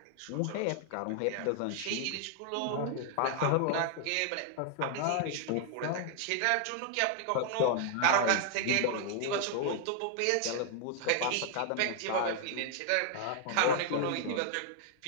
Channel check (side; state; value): both; different; correlation 0.00